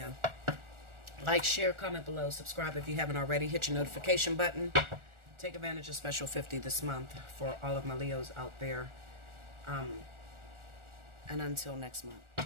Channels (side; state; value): left; late; 1.4 ms